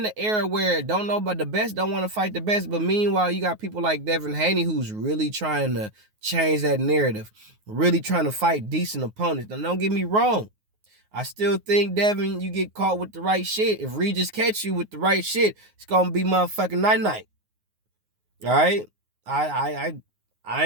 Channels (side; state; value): left; late; 9.5 ms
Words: an era where don't know about the best, don't want to fight the best. But meanwhile, you got people like Devin Haney who's really trying to change that narrative, really trying to fight decent opponents. Now, don't get me wrong. I still think, Devin, you get caught with the right shit. If Regis catch you with the right shit, it's going to be motherfucking night-night. All right? I